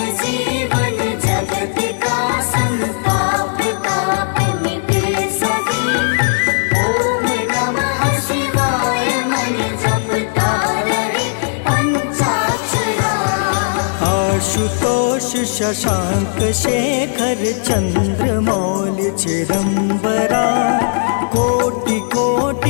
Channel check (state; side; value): silent; right; digital silence